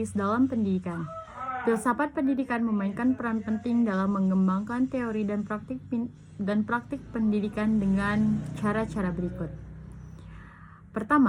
dalam pendidikan. Filsafat pendidikan memainkan peran penting dalam mengembangkan teori dan praktik pendidikan dengan cara-cara berikut.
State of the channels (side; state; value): both; identical; correlation 1.00